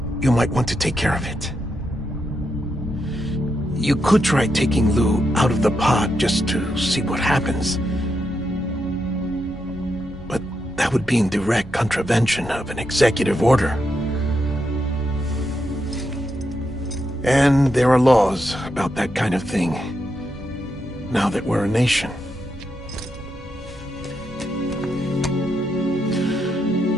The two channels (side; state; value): both; normal; correlation 0.83